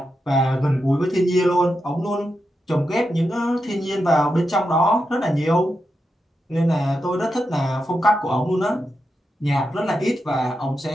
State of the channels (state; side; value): normal; both; correlation 0.87